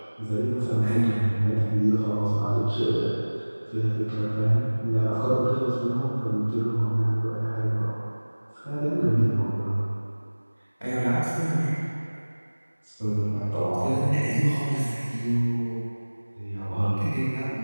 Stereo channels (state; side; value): inverted; both; correlation -1.00